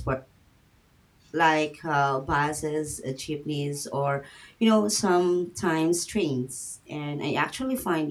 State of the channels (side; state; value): both; identical; correlation 1.00